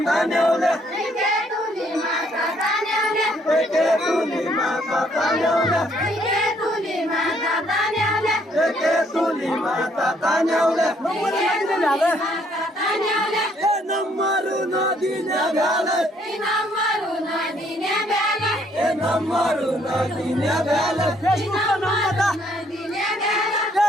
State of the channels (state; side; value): normal; both; correlation 0.67